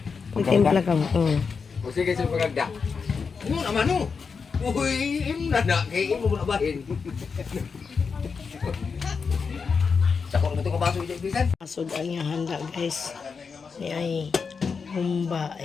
Pagtimpla ka mo. O sige sa pagagda. Ano naman no? Uy, na kay imo na bahin. Sakot mo to ka baso ibisan. Masud ang iyang handa guys. Ni ay humba.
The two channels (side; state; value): right; quieter; 5.4 dB